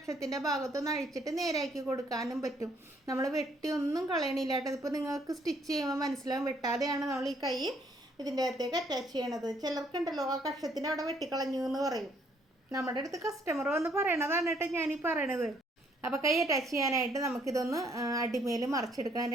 ഭാഗത്തൊന്ന് അഴിച്ചിട്ട് നേരാക്കി കൊടുക്കാനും പറ്റും. നമ്മൾ വെട്ടി ഒന്നും കളയണില്ല കേട്ടോ. ഇതിപ്പോൾ നിങ്ങൾക്ക് സ്റ്റിച്ച് ചെയ്യുമ്പോൾ മനസ്സിലാവും, വെട്ടാതെയാണ് നമ്മൾ ഈ കൈ ഇതിൻ്റെ അകത്തേക്ക് അറ്റാച്ച് ചെയ്യണത്. ചിലർക്കുണ്ടല്ലോ ആ കക്ഷത്തിൻ്റെ അവിടെ വെട്ടിക്കളഞ്ഞു എന്ന് പറയും. നമ്മുടെ അടുത്ത് കസ്റ്റമർ വന്ന് പറയണതാണ് കേട്ടോ ഞാനീ പറയണത്. അപ്പോൾ കൈ അറ്റാച്ച് ചെയ്യാനായിട്ട് നമുക്കിതൊന്ന് അടിമേൽ മറിച്ചെടുക്കണം.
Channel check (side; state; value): both; normal; correlation 0.67